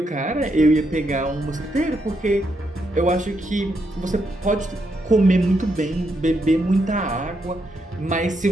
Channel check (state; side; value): normal; both; correlation 0.79